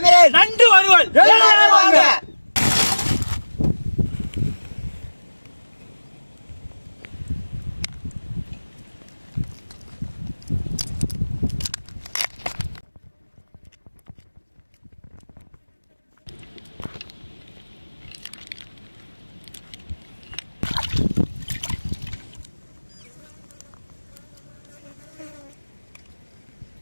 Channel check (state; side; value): inverted; both; correlation -1.00